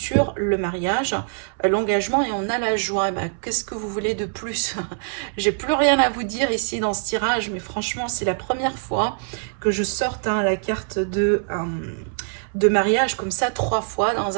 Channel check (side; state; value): left; silent; 63 dB below the other